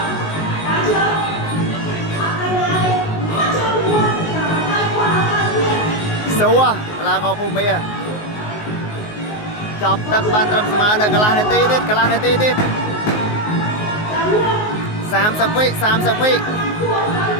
សួរកីឡាករភូមិចាប់ទឹកបានត្រឹមស្មើនៅកន្លះនាទីទៀត30 វិ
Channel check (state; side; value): late; right; 19 ms